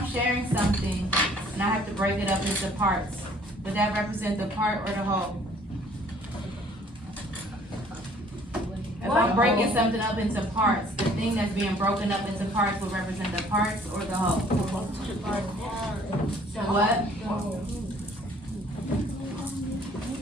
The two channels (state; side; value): normal; both; correlation 0.57